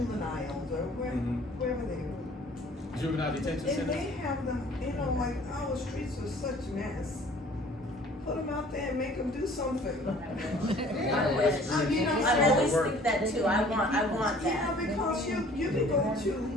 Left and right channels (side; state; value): both; normal; correlation 0.52